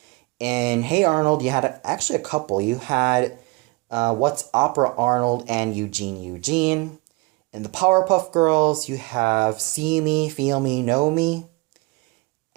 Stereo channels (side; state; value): left; quieter; 26.2 dB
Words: In Hey Arnold, you had actually a couple. You had What's Opera Arnold and Eugene Eugene. In the Powerpuff Girls, you have See Me, Feel Me, Know Me.